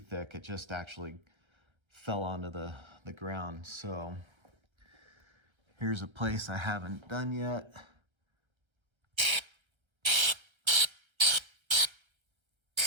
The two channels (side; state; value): left; late; 1.3 ms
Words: It just actually fell onto the ground. So here's a place I haven't done yet.